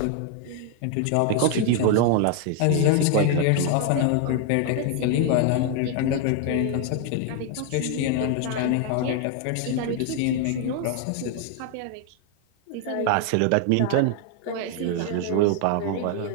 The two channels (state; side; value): different; both; correlation 0.00